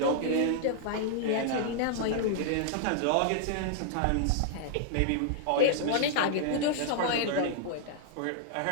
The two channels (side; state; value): both; different; correlation -0.01